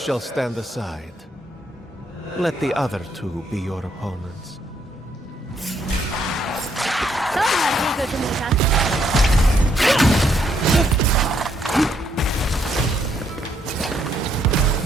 stand aside. Let the other two be your opponents.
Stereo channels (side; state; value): both; normal; correlation 0.72